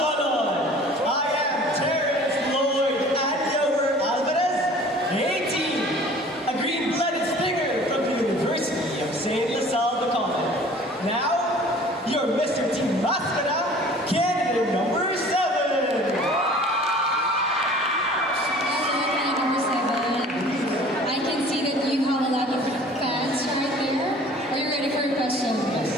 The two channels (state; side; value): normal; both; correlation 0.48